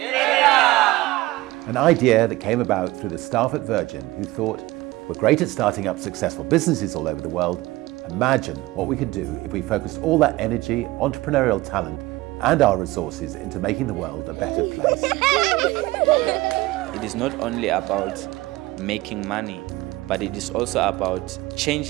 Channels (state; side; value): quieter; left; 19.3 dB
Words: idea that came about through the staff at Virgin who thought, we're great at starting up successful businesses all over the world. Imagine what we could do if we focused all that energy, entrepreneurial talent and our resources into making the world a better place. It is not only about making money, but it is also about